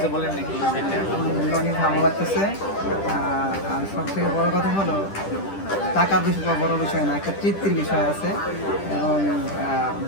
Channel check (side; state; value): right; late; 10 ms